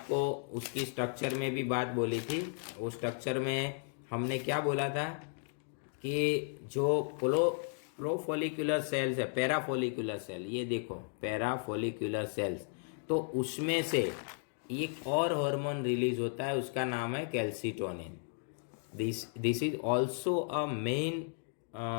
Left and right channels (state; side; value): silent; right; 55 dB below the other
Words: उसकी स्ट्रक्चर में भी बात बोली थी। वो स्ट्रक्चर में हमने क्या बोला था कि जो प्रोफोलिकुलर सेल्स है, पैराफोलिकुलर सेल, ये देखो पैराफोलिकुलर सेल्स, तो उसमें से एक और हार्मोन रिलीज होता है, उसका नाम है calcitonin. This is also a main